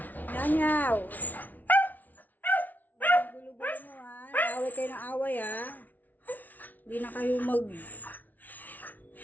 Nanyaw! Gulo-gulo mo, ha? Away kayo ng away, ha? Hindi na kayo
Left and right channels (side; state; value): right; late; 0.079 ms